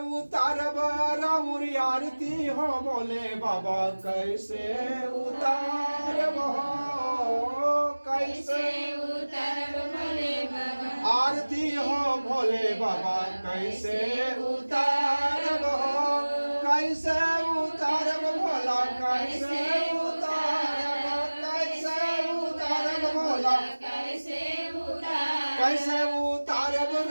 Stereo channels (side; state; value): both; inverted; correlation -1.00